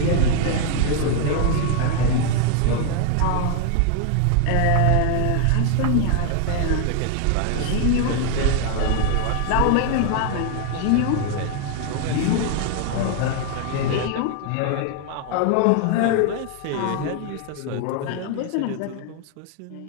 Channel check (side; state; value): both; different; correlation 0.00